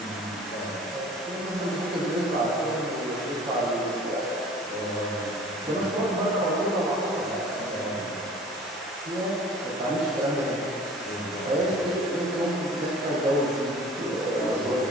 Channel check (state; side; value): normal; both; correlation 0.46